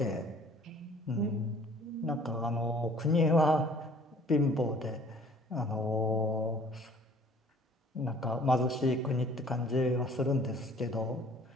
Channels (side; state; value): both; normal; correlation 0.54